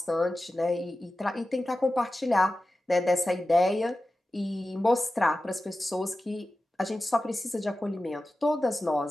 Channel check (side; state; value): both; normal; correlation 0.94